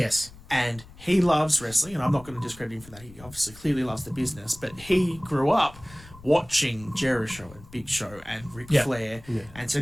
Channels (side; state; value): left; noise; rumble, 20 dB below the sound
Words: And he loves wrestling, and I'm not going to discredit him for that. He obviously clearly loves the business, but he grew up watching JERISHOW and Big Show and Ric Flair, and so